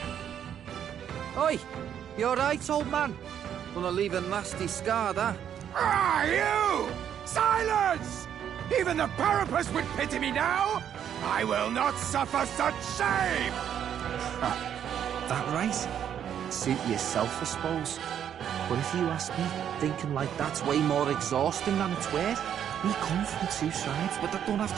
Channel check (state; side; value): quieter; left; 9.3 dB